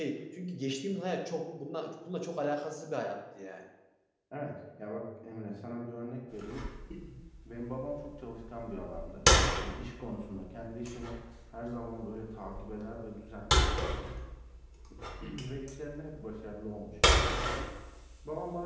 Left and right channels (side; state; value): both; identical; correlation 1.00